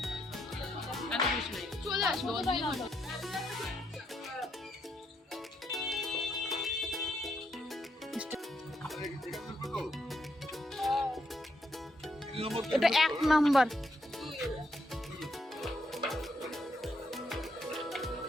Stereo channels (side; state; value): both; normal; correlation 0.78